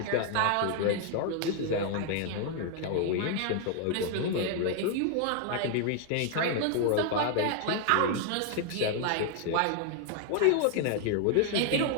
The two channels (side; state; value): both; different; correlation 0.00